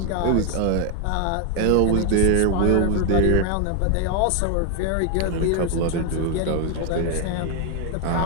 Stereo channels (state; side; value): different; both; correlation 0.01